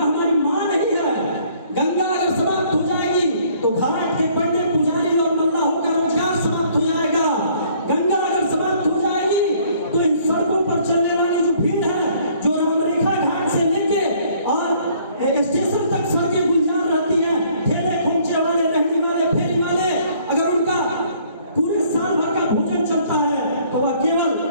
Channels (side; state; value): both; inverted; correlation -0.60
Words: हमारी मां नहीं है। गंगा अगर समाप्त हो जाएगी तो घाट के पंडित पुजारी और मल्लाहों का रोजगार समाप्त हो जाएगा। गंगा अगर समाप्त हो जाएगी तो इन सड़कों पर चलने वाली जो भीड़ है, जो रामरेखा घाट से लेके और स्टेशन तक सड़कें गुलजार रहती हैं, ठेले खोमचे वाले, रहने वाले, फेरी वाले, अगर उनका पूरे साल भर का भोजन चलता है तो वह केवल